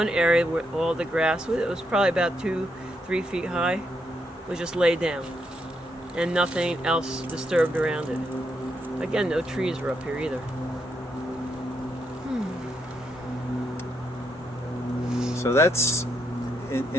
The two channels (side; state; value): both; normal; correlation 0.79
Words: area where all the grass, it was probably about 2-3 feet high, was just laid down, and nothing else disturbed around it. Again, no trees were up here either. So that's,